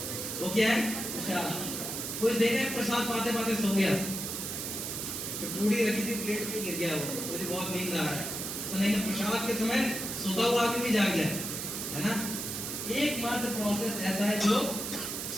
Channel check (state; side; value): noise; right; hiss, 4 dB below the sound